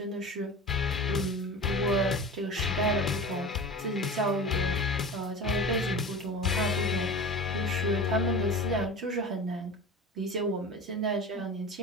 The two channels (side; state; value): both; normal; correlation 0.33